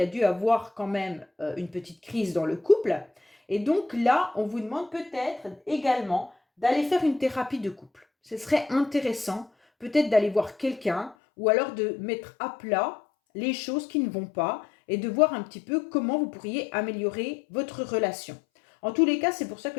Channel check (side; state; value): right; drops out; at 11.2 s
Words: a dû avoir quand même une petite crise dans le couple. Et donc là, on vous demande peut-être également d'aller faire une thérapie de couple. Ce serait intéressant peut-être d'aller voir quelqu'un ou alors de mettre à plat les choses qui ne vont pas et de voir un petit peu comment vous pourriez améliorer votre relation. En tous les cas, c'est pour ça